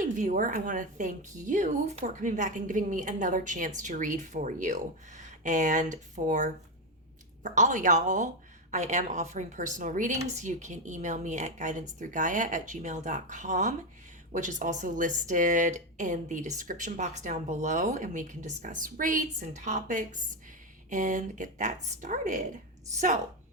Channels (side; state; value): both; normal; correlation 0.09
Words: viewer, I want to thank you for coming back and giving me another chance to read for you. And for all y'all, I am offering personal readings. You can email me at guidancethroughgaia@gmail.com, which is also listed in the description box down below, and we can discuss rates and topics and get that started. So